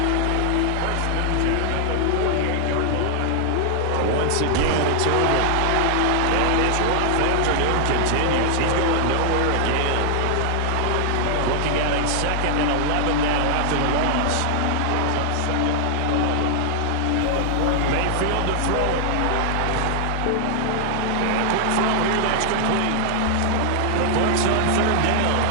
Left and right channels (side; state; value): both; different; correlation 0.00